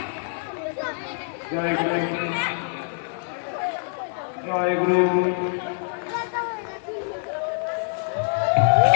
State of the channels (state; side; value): silent; right; digital silence